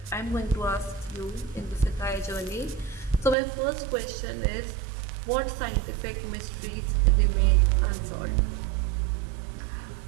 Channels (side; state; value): left; drops out; at 3.4 s